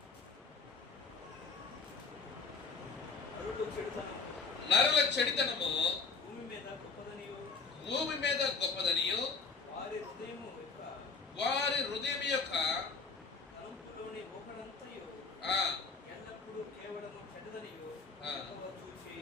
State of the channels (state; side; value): quieter; right; 4.7 dB